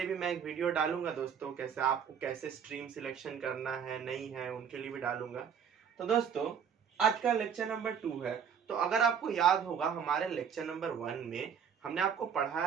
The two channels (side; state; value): left; quieter; 7.5 dB